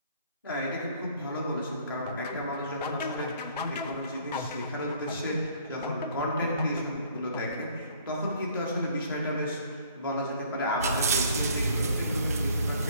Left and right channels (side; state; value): both; inverted; correlation -0.57